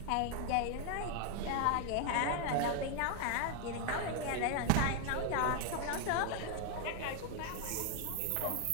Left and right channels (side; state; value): both; different; correlation 0.00